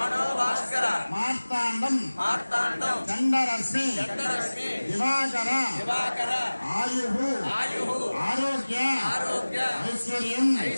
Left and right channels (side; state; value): both; inverted; correlation -1.00